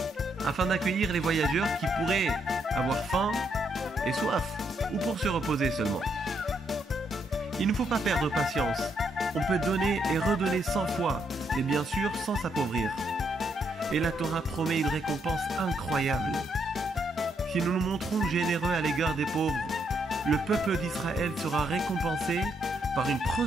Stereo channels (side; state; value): both; normal; correlation 0.76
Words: afin d'accueillir les voyageurs qui pourraient avoir faim et soif ou pour se reposer seulement. Il ne faut pas perdre patience. On peut donner et redonner 100 fois, et bien sûr sans s'appauvrir. Et la Torah promet une récompense incroyable. Si nous nous montrons généreux à l'égard des pauvres, le peuple d'Israël sera récompensé par une